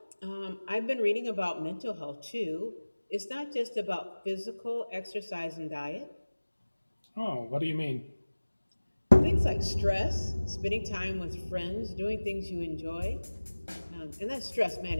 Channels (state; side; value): inverted; both; correlation -1.00